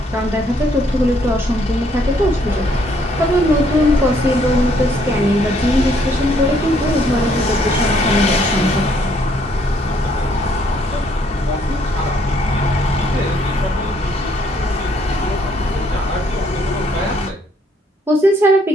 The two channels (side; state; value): both; normal; correlation 0.67